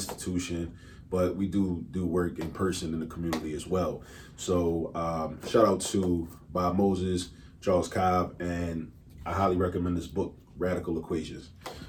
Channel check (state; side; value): identical; both; correlation 1.00